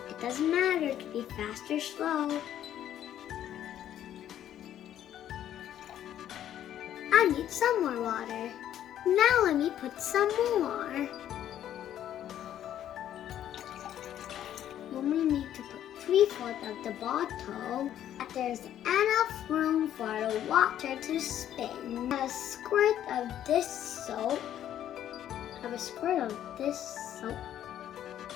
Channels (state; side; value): quieter; right; 11.1 dB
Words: It doesn't matter, it can be fast or slow. I need some more water. Now let me put some more. We only need to put 3/4 of the bottle. There's enough room for the water to spin. A squirt of this soap.